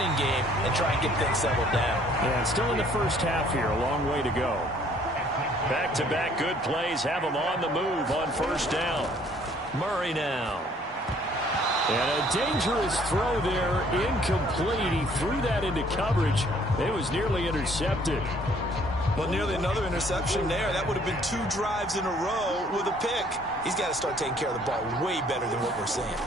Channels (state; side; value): normal; both; correlation 0.60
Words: game and try and get things settled down. Yeah, still in the first half here, a long way to go. Back-to-back good plays have him on the move on 1st down. Murray now. And a dangerous throw there, incomplete. He threw that into coverage. It was nearly intercepted. Well, nearly another interception there. That would have been 2 drives in a row with a pick. He's got to start taking care of the ball way better than what we're seeing.